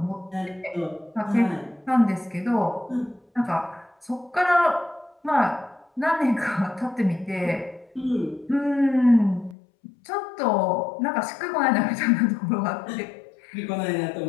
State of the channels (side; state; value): right; drops out; at 9.6 s